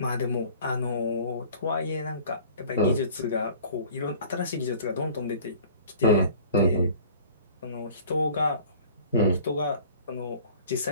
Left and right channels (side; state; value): both; inverted; correlation -0.47